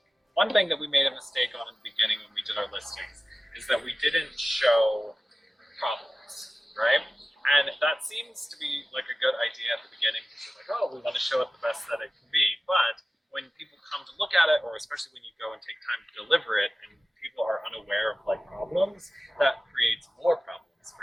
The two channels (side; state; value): both; normal; correlation 0.96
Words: one thing that we made a mistake on in the beginning when we did our listings is that we didn't show problems, right? And that seems to be like a good idea at the beginning because we're like, oh, we want to show it the best that it can be. But when people come to look at it, or especially when you go and take time to deliver it and people are unaware of like problems, that creates more problems